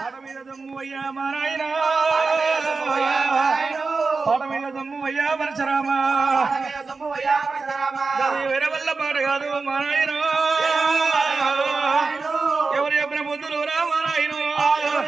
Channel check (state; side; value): quieter; left; 4.2 dB